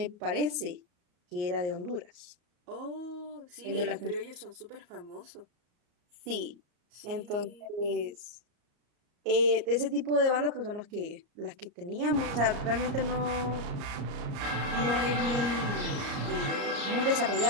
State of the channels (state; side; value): late; left; 34 ms